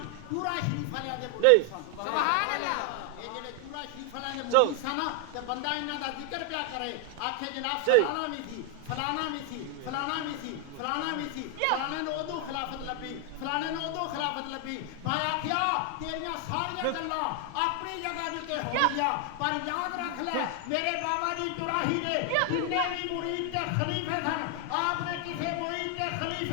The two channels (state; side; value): different; both; correlation 0.00